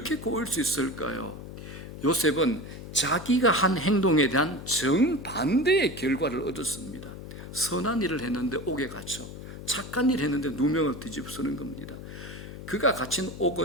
꼬일 수 있을까요? 요셉은 자기가 한 행동에 대한 정반대의 결과를 얻었습니다. 선한 일을 했는데 옥에 갇혀, 착한 일을 했는데 누명을 뒤집어쓰는 겁니다. 그가 갇힌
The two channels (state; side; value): noise; left; hum, 12 dB below the sound